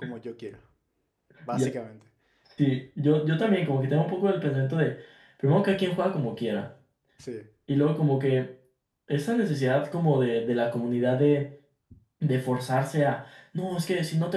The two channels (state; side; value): identical; both; correlation 1.00